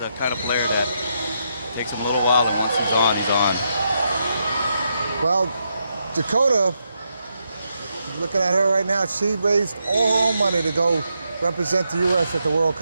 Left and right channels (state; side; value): inverted; both; correlation -0.81